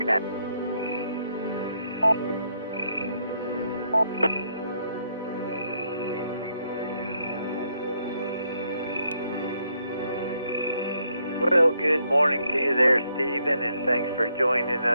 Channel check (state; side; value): inverted; both; correlation -0.74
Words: that. Well, good morning to you there, Stephen, and thanks for joining